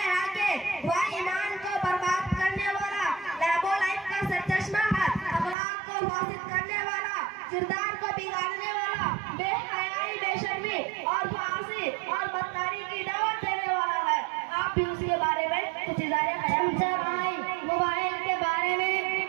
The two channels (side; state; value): left; drops out; at 5.6 s